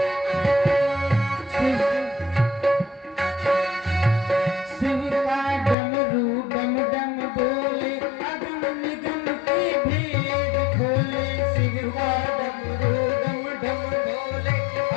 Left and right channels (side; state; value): right; drops out; at 5.8 s